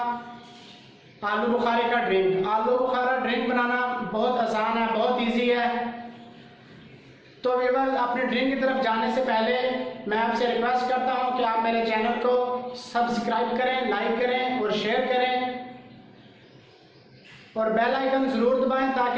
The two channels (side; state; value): both; identical; correlation 1.00